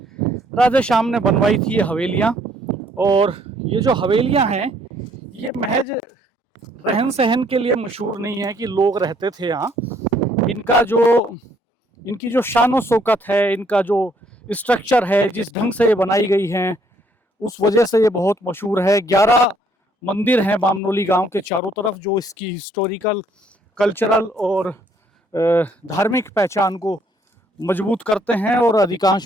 राधे श्याम ने बनवाई थी ये हवेलियाँ। और ये जो हवेलियाँ हैं ये महज रहन सहन के लिए मशहूर नहीं है कि लोग रहते थे यहाँ। इनकी जो शान शौकत है, इनका जो स्ट्रक्चर है, जिस ढंग से ये बनाई गई हैं, उस वजह से ये बहुत मशहूर है। 11 मंदिर हैं बामनोली गांव के चारों तरफ, जो इसकी हिस्टोरिकल, कल्चरल और धार्मिक पहचान को मजबूत करते हैं। और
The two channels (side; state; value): both; normal; correlation 0.65